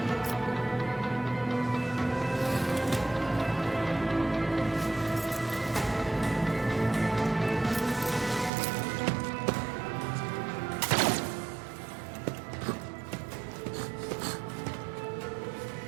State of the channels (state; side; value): drops out; left; at 8.5 s